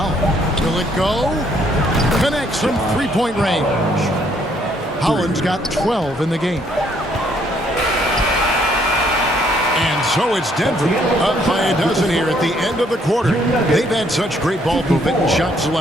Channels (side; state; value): both; normal; correlation 0.67